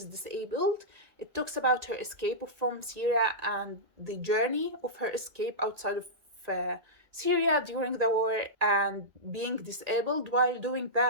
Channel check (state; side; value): late; left; 1.9 ms